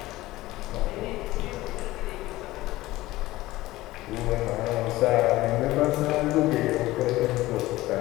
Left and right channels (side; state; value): right; quieter; 17.7 dB